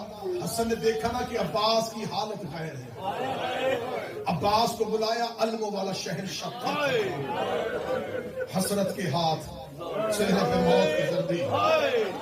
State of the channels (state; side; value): identical; both; correlation 1.00